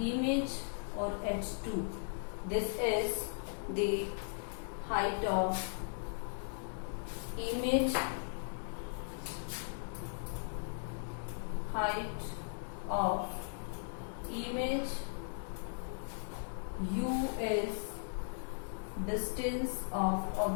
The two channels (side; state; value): right; silent; digital silence